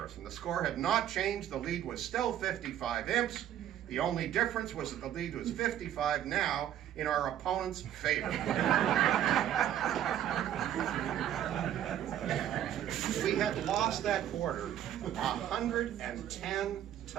The score had not changed. The lead was still 55 imps. The only difference was that the lead was 55 now in our opponent's favor. We had lost that quarter 110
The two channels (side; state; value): left; quieter; 11.1 dB